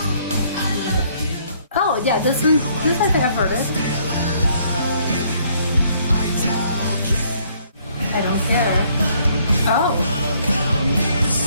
Oh yeah, this one. This I think I've heard it. I don't care. Oh.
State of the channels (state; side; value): inverted; both; correlation -0.65